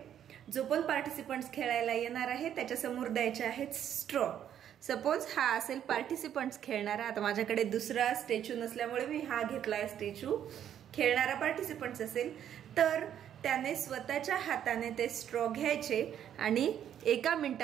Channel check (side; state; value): left; quieter; 9.9 dB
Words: जो पण पार्टिसिपंट्स खेळायला येणार आहे त्याच्या समोर द्यायचे आहेत स्ट्रॉ। सपोज हा असेल पार्टिसिपंट्स खेळणारा, आता माझ्याकडे दुसरा स्टॅच्यू नसल्यामुळे मी हा घेतलाय स्टॅच्यू। खेळणारा पार्टिसिपंट्स असेल तर त्याने स्वतःच्या हाताने ते स्ट्रॉ घ्यायचे आणि 1